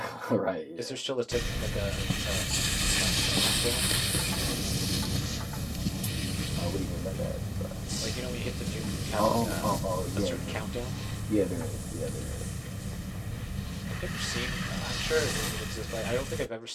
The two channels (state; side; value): identical; both; correlation 1.00